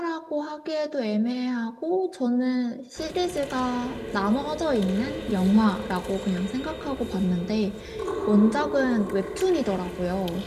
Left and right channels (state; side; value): identical; both; correlation 1.00